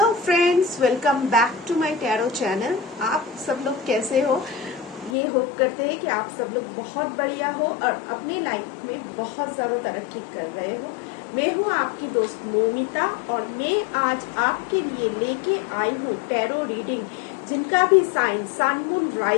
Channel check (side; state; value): right; drops out; at 5.2 s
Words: friends, welcome back to my tarot channel. आप सब लोग कैसे हो? ये होप करते हैं कि आप सब लोग बहुत बढ़िया हो और अपनी लाइफ में बहुत ज़्यादा तरक्की कर रहे हो। मैं हूँ आपकी दोस्त मोमिता और मैं आज आपके लिए लेके आई हूँ टैरो रीडिंग। जिनका भी साइन सन मून